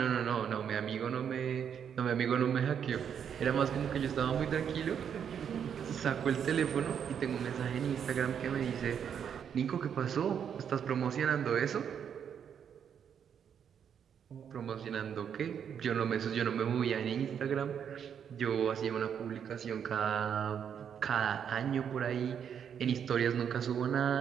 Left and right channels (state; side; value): quieter; left; 8.1 dB